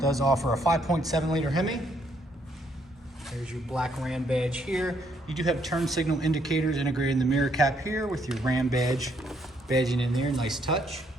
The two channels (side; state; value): both; normal; correlation 0.70